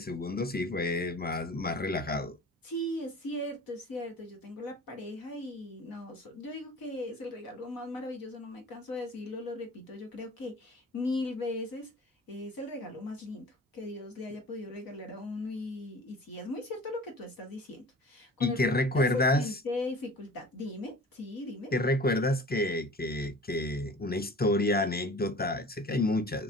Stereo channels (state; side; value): normal; both; correlation 0.42